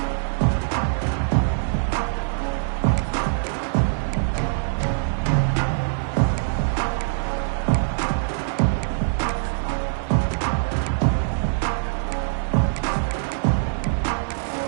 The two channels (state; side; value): silent; left; digital silence